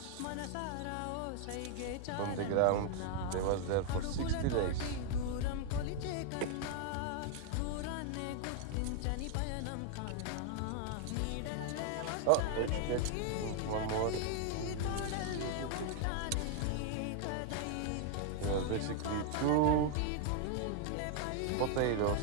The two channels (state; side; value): different; both; correlation 0.00